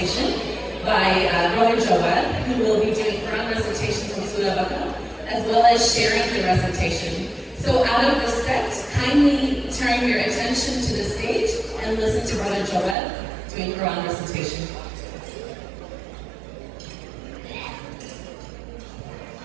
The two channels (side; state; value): left; drops out; at 13.0 s